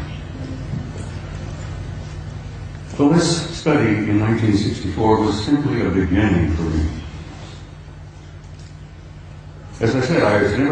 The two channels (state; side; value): identical; both; correlation 1.00